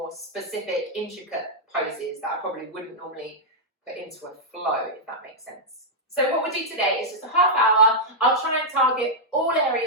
specific, intricate poses that I probably wouldn't normally put into a flow, if that makes sense. So what we'll do today is just a half hour. I'll try and target all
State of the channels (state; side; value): normal; both; correlation -0.06